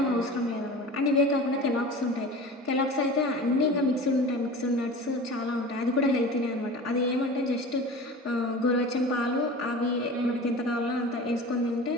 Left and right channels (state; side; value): normal; both; correlation 0.36